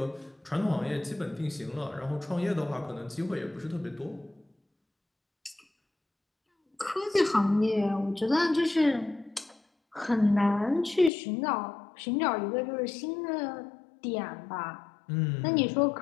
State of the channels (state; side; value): drops out; right; at 11.1 s